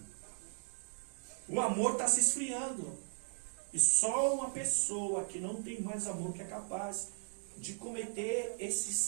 O amor está se esfriando. E só uma pessoa que não tem mais amor que é capaz de cometer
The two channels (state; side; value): silent; left; digital silence